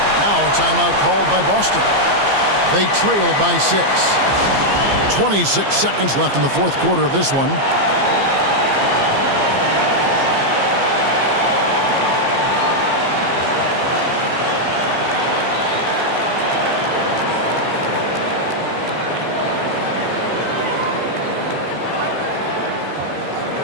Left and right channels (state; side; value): late; left; 15 ms